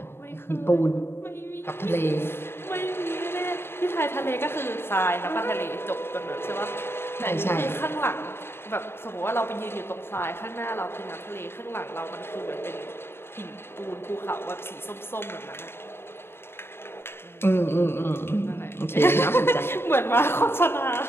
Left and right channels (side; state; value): right; late; 0.11 ms